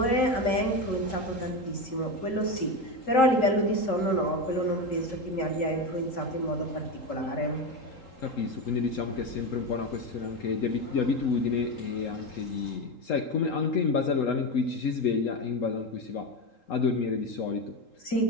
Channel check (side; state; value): right; late; 3.8 ms